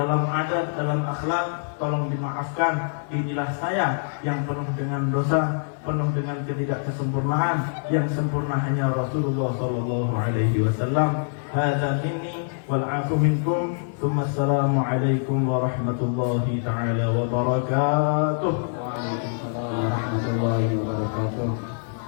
adat, dalam akhlak, tolong dimaafkan. Inilah saya yang penuh dengan dosa, penuh dengan ketidaksempurnaan. Yang sempurna hanya Rasulullah sallallahu alaihi wasallam. Hadza minni wal 'afu minkum. Assalamu alaikum warahmatullahi taala wabarakatuh. Waalaikumsalam warahmatullahi wabarakatuh.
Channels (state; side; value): silent; right; digital silence